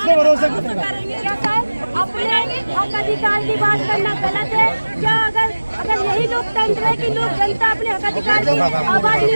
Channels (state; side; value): inverted; both; correlation -1.00